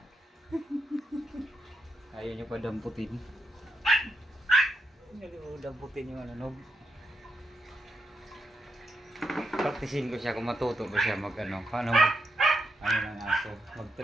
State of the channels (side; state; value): both; normal; correlation 0.82